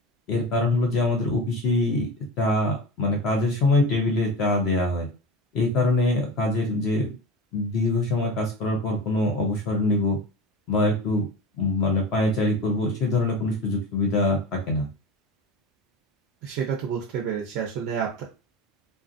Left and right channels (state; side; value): normal; both; correlation 0.31